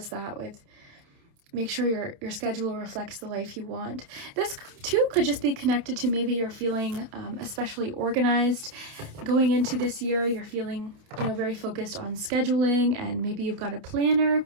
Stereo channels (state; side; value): late; left; 28 ms